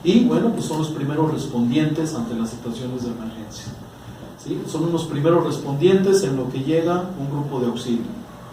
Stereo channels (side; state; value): both; identical; correlation 1.00